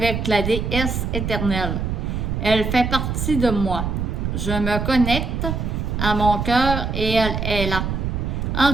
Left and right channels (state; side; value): noise; right; rumble, 2 dB below the sound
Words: la déesse éternelle. Elle fait partie de moi. Je me connecte à mon cœur et elle est là,